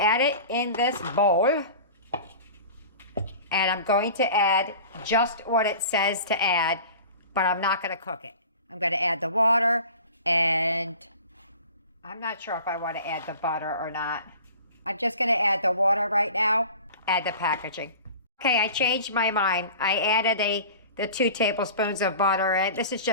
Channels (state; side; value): inverted; both; correlation -0.40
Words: it in this bowl. And I'm going to add just what it says to add, but I'm not going to cook it. I'm going to add the water, and I'm not sure if I want to add the butter or not. I'm just going to add the water right now, add the packaging. Okay, I changed my mind. I added the 2 tablespoons of butter, and this is